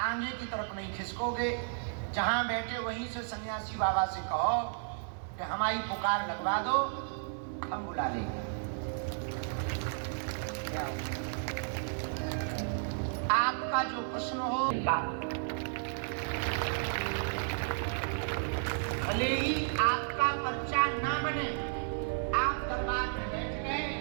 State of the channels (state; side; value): silent; left; 56 dB below the other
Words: की तरफ नहीं खिसकोगे। जहां बैठे वहीं से सन्यासी बाबा से कहो कि हमारी पुकार लगवा दो, हम बुला लेंगे। आपका जो प्रश्न हो, भले ही आपका पर्चा ना बने, आप दरबार में बैठ गए